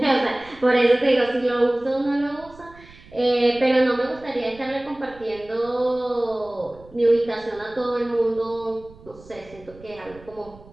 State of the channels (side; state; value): right; noise; rumble, 22 dB below the sound